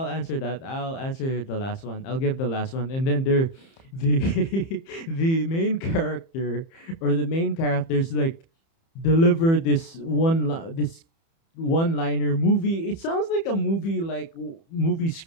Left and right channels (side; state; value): right; late; 30 ms